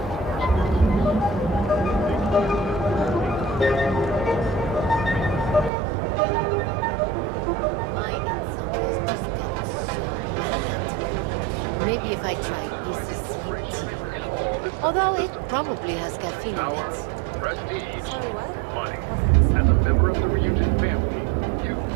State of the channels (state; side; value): drops out; left; at 5.7 s